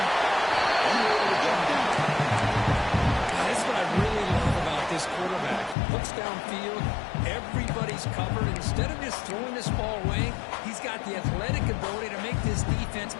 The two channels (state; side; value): drops out; right; at 5.8 s